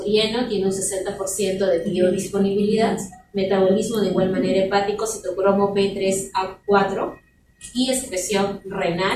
tiene un 60% de biodisponibilidad, metabolismo de igual manera hepático, citocromo P3A4 y excreción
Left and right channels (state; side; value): identical; both; correlation 1.00